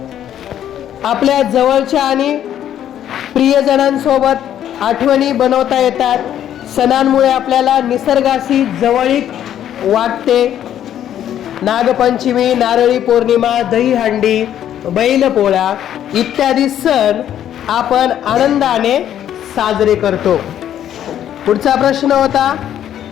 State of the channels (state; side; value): quieter; right; 10.7 dB